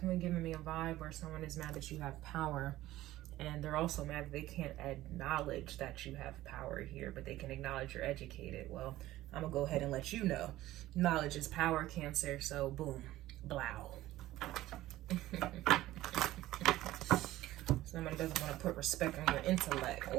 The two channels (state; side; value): quieter; left; 15.7 dB